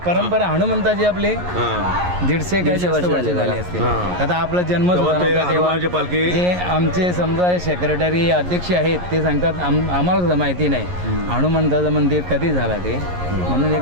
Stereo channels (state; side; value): late; left; 11 ms